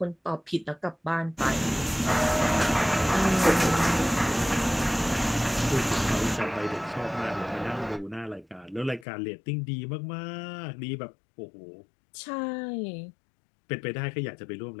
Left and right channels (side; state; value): right; drops out; at 9.1 s